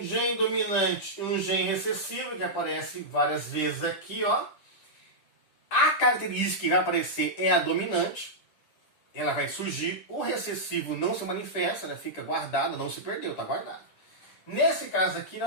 gene dominante e um gene recessivo, que aparece várias vezes aqui, ó. A característica que vai aparecer é a dominante. Ela vai surgir. O recessivo não se manifesta, ela fica guardado, não se perdeu, está guardado. Nesse caso aqui,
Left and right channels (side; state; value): right; late; 10 ms